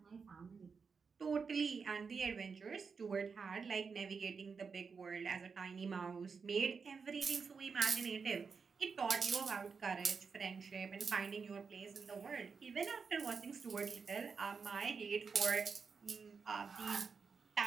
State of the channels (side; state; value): left; quieter; 5.4 dB